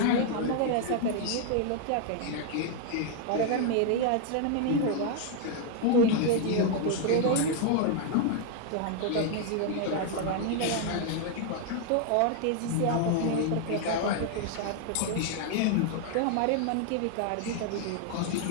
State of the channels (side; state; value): both; different; correlation 0.00